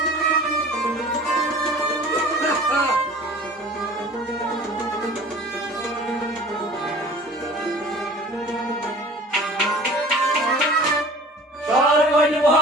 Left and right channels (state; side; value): normal; both; correlation 0.44